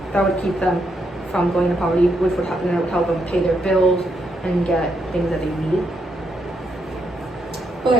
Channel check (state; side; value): normal; both; correlation 0.79